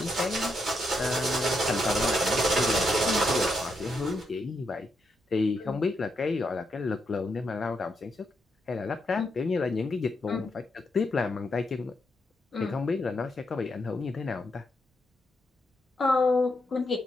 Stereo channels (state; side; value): normal; both; correlation 0.81